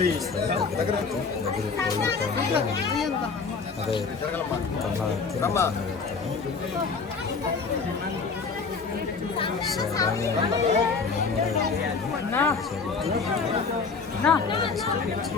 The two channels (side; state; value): right; quieter; 4.9 dB